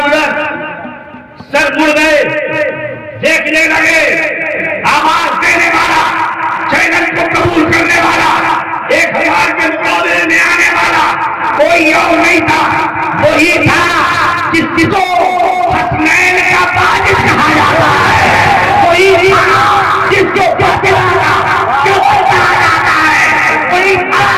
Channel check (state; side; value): identical; both; correlation 1.00